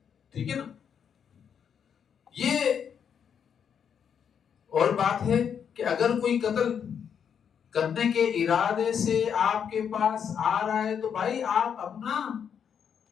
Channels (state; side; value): quieter; right; 7.7 dB